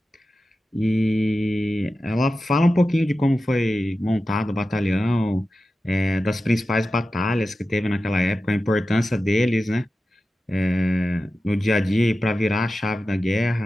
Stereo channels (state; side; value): normal; both; correlation 0.93